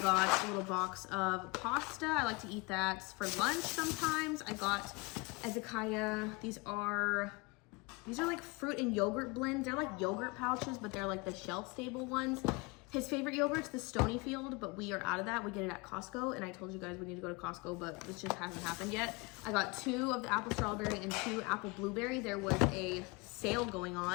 got a little box of pasta. I like to eat that for lunch sometimes. I got Ezekiah. These are like fruit and yogurt blends. They're like yogurt pouches, but they're like the shelf stable ones. His favorite yogurt's the Stonyfield, but we are out of that. We get it at Costco, and I told you guys we need to go to Costco, but this just hasn't happened yet. I got 2 of the apple strawberry and 2 apple blueberry. There was a sale going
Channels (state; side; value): quieter; right; 26.8 dB